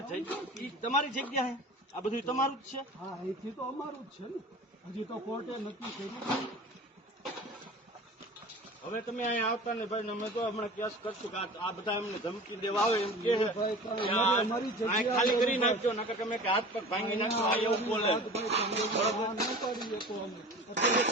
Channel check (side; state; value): both; normal; correlation 0.38